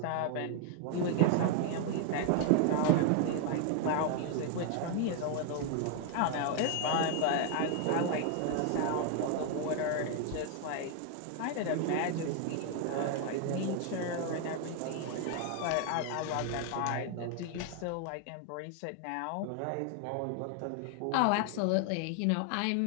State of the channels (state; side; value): different; both; correlation 0.00